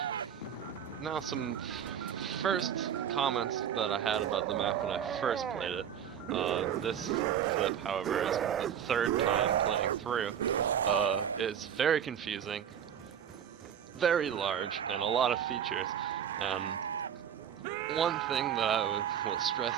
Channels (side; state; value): left; quieter; 8.9 dB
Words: now some first comments that I had about the map when I first played it. This clip, however, is the 3rd time playing through. It's very confusing, very large, and a lot of features. And one thing that I will stress